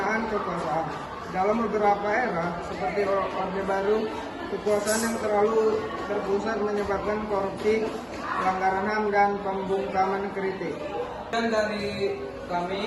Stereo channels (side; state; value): both; identical; correlation 1.00